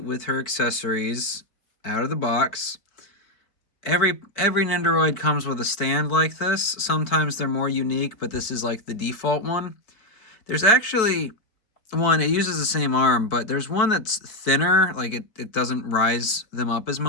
her accessories out of the box. Every Nendoroid comes with a stand like this. Sometimes they're more unique, but this is like the default one. There's actually one, it uses the same arm, but there's one that's thinner, like it doesn't rise them up as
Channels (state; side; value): late; right; 4.6 ms